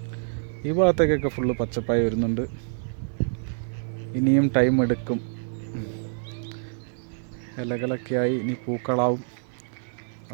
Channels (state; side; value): silent; left; 56 dB below the other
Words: ഈ ഭാഗത്തേക്കൊക്കെ ഫുള്ള് പച്ചപ്പായി വരുന്നുണ്ട്. ഇനിയും ടൈം എടുക്കും. ഇലകളൊക്കെ ആയി ഇനി പൂക്കളാവും.